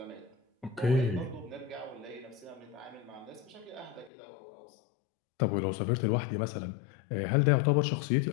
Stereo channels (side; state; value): right; drops out; at 4.1 s